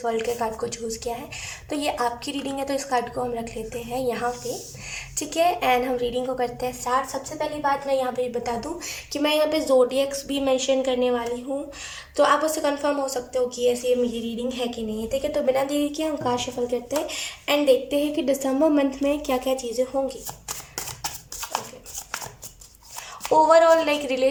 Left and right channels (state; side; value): identical; both; correlation 1.00